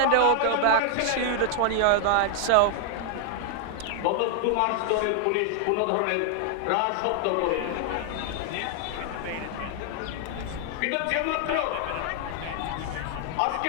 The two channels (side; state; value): both; different; correlation 0.00